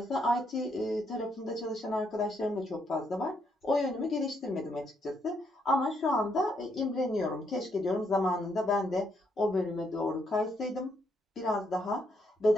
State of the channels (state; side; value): normal; both; correlation 0.75